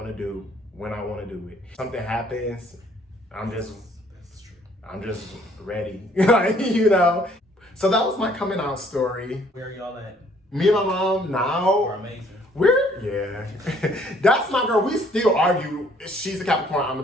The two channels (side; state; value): both; normal; correlation 0.62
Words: to do when I want to do it. Something happens, I'm just ready, like, So that was my coming out story. Where are y'all at? Me and my mom now. We're amazing. Yeah. That's my girl. We still argue. She's a Capricorn, I'm